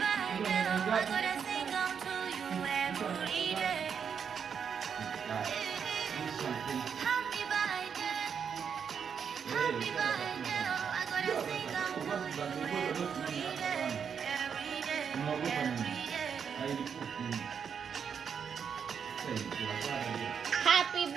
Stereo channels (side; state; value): left; quieter; 7.1 dB